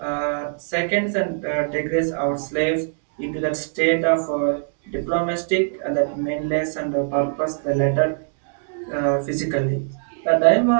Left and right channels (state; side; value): silent; left; digital silence